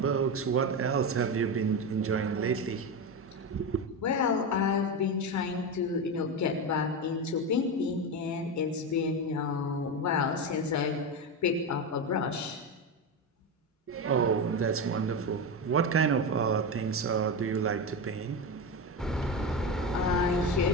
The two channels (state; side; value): normal; both; correlation 0.16